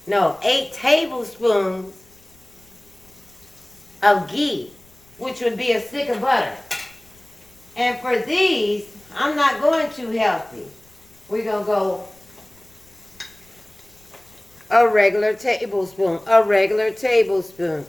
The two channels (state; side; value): noise; left; rumble, 30 dB below the sound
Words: tablespoons of ghee, which would be a stick of butter. And for these, I'm not going too healthy. We're going to go a regular tablespoon.